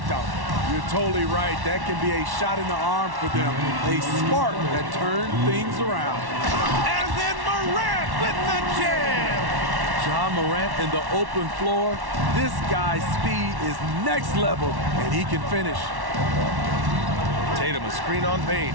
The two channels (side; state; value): left; late; 1.1 ms